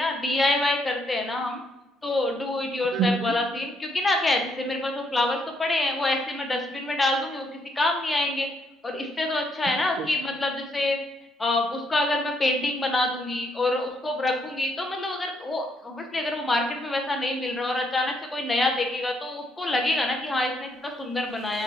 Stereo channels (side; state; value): both; normal; correlation 0.74